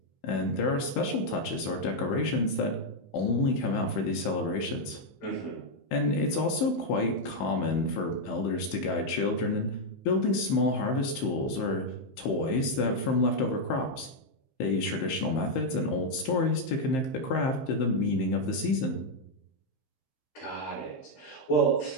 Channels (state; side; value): late; right; 15 ms